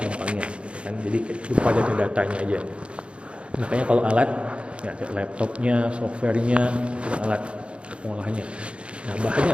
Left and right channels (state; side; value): late; left; 0.058 ms